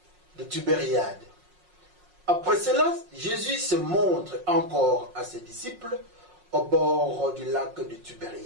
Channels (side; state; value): left; late; 5.5 ms